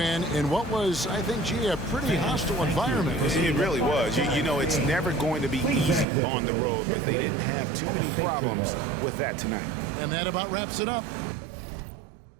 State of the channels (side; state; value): left; drops out; at 6.1 s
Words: in what was, I think, gee, a pretty hostile environment. It really was. You know, it's never going to be easy on the road, but they didn't have too many problems with that tonight. And that about wraps it up.